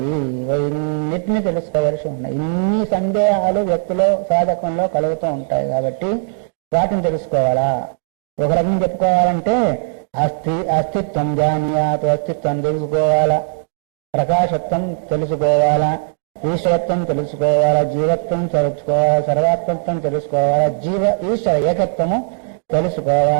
ఇవన్నిటిని తెలుసుకోవాల్సి ఉన్నాయి. ఇన్ని సందేహాలు వ్యక్తిలో, సాధకంలో కలుగుతూ ఉంటాయి. కాబట్టి వాటిని తెలుసుకోవాలా. ఒక రకం చెప్పుకోవాలంటే అస్తిత్వం జానీయాత్, అస్తిత్వం తెలుసుకోవాలా, ప్రకాశత్వం తెలుసుకోవాలా, ఈశ్వరత్వం తెలుసుకోవాలా, జీవత్వం తెలుసుకోవాలా, సర్వాత్మత్వం తెలుసుకోవాలా, ఈశ్వర ఏకత్వము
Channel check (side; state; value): left; silent; digital silence